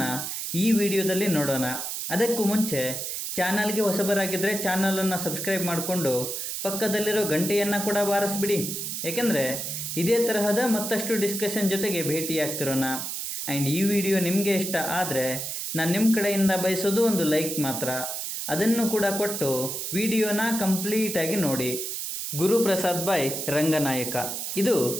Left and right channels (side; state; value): right; noise; hiss, 4 dB below the sound